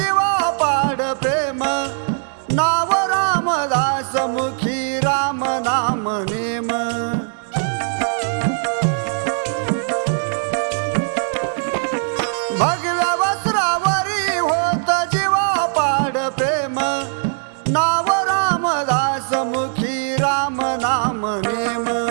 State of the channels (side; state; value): left; silent; 59 dB below the other